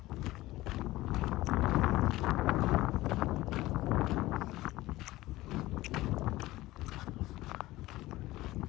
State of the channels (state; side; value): quieter; right; 17.7 dB